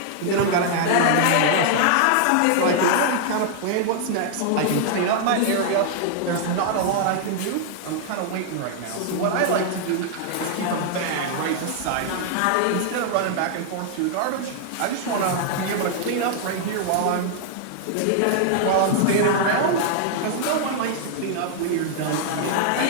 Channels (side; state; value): both; different; correlation -0.01